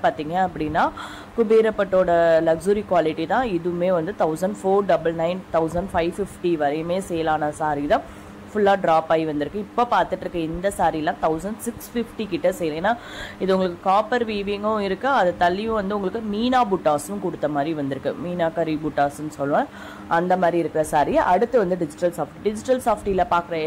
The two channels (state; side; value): identical; both; correlation 1.00